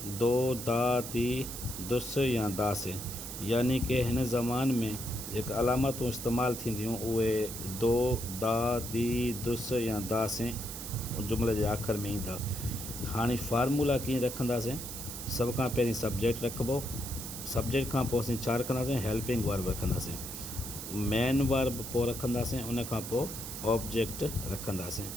दो, दा, दी, दुस या दास, यानी कि हिन ज़मान में जेका अलामतूं इस्तेमालु थींदियूं उहे दो, दा, दी, दुस या दास जुमिले जे आख़िर में ईंदा। हाणे फार्मूला कीअं रखंदासीं? सभ खां पहिरीं सब्जेक्ट रखिबो, सब्जेक्ट खां पोइ असीं छा रखंदासीं? हेल्पिंग वर्ब रखंदासीं, मेन वर्ब पोइ रखंदासीं, उन खां पोइ ऑब्जेक्ट रखंदासीं।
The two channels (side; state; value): right; noise; hiss, 8 dB below the sound